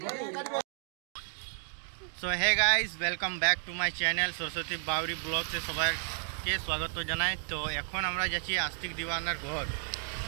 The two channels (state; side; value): silent; left; digital silence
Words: So hey guys, welcome back to my channel Saraswati Bauri ব্লগসে সবাইকে স্বাগত জানাই। তো এখন আমরা যাচ্ছি আস্তিক দিবানার ঘর,